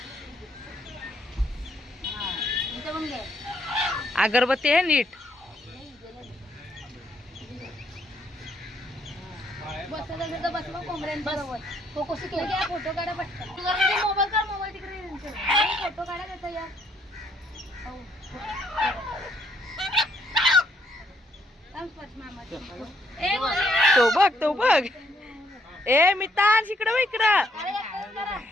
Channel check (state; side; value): normal; both; correlation 0.70